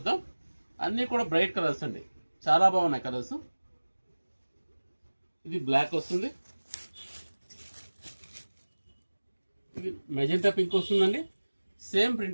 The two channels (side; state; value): both; inverted; correlation -1.00